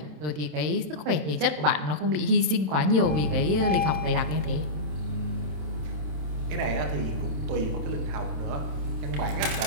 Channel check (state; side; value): late; left; 27 ms